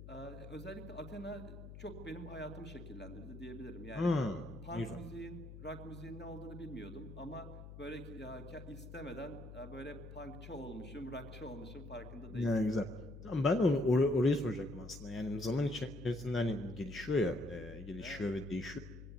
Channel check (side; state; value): left; noise; hum, 12 dB below the sound